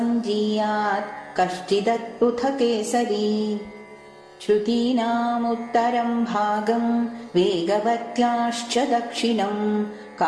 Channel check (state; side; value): identical; both; correlation 1.00